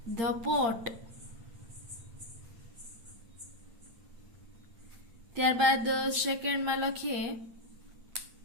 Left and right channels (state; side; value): late; left; 8.7 ms